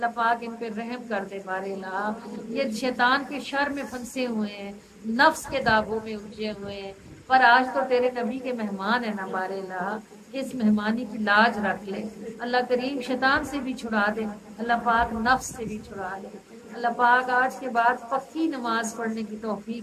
پاک ان پہ رحم کر دے بارے الہ۔ یہ شیطان کے شر میں پھنسے ہوئے ہیں، نفس کے داغوں میں الجھے ہوئے ہیں، پر آج تو تیرے نبی کے مہمان ہیں نا بارے الہ، اس مہمانی کی لاج رکھ لے۔ اللہ کریم شیطان سے بھی چھڑا دے، اللہ پاک نفس سے بھی چھڑا دے۔ اللہ پاک آج کے بعد پکی نماز پڑھنے کی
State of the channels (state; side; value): identical; both; correlation 1.00